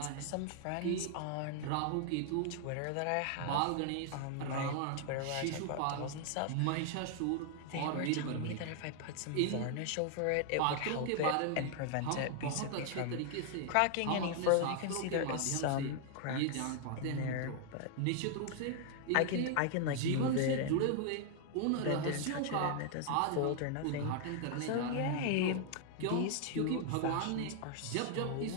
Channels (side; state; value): both; different; correlation 0.00